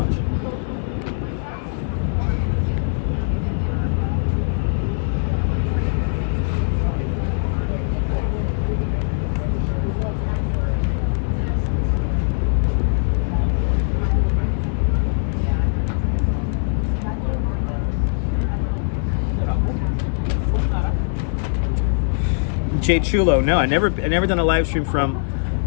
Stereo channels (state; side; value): silent; right; 65 dB below the other